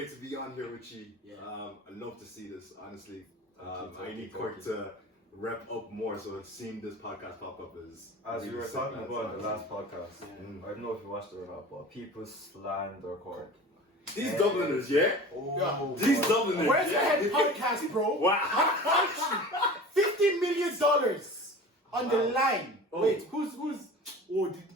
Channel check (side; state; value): both; normal; correlation 0.38